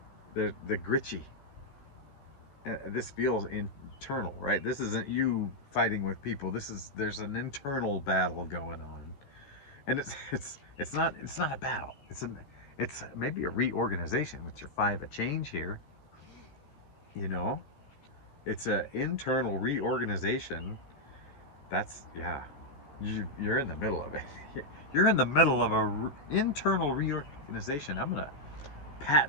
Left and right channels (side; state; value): right; late; 14 ms